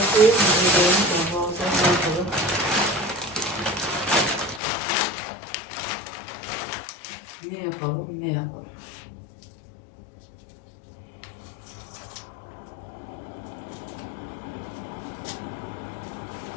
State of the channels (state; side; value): drops out; right; at 4.6 s